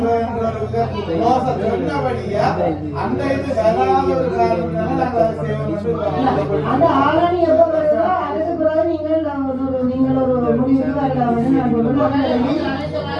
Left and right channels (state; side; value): identical; both; correlation 1.00